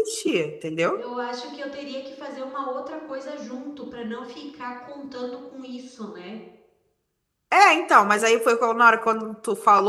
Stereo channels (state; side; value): identical; both; correlation 1.00